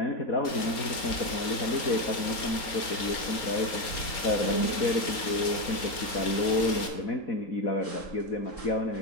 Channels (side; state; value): right; late; 4.3 ms